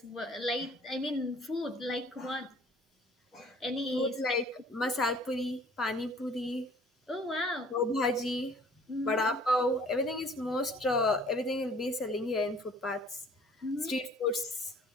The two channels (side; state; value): both; normal; correlation 0.54